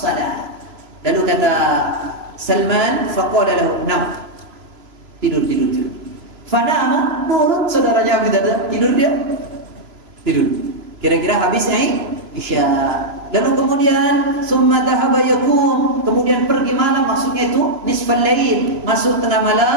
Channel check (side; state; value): left; late; 3.0 ms